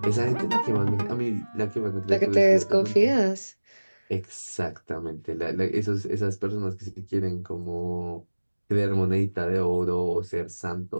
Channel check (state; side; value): inverted; both; correlation -1.00